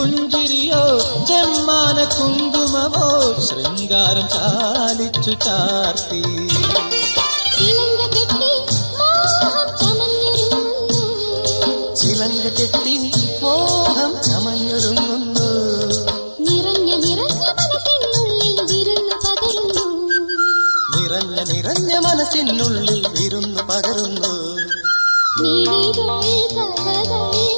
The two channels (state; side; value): inverted; both; correlation -1.00